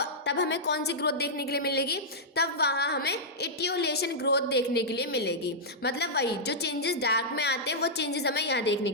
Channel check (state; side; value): normal; both; correlation -0.10